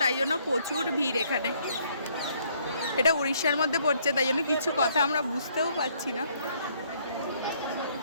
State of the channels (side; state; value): both; inverted; correlation -0.66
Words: তাই জন্য প্রচুর ভিড় এখানে। এটা উড়িষ্যার মধ্যে পড়ছে, তাই জন্য কিছু কথা আমরা বুঝতেও পারছি না।